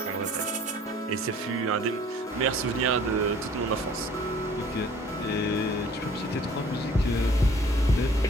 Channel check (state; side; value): normal; both; correlation 0.53